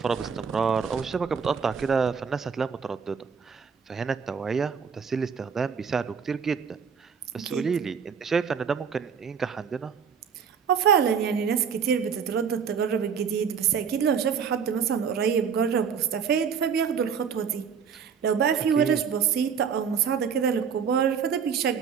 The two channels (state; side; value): quieter; left; 6.7 dB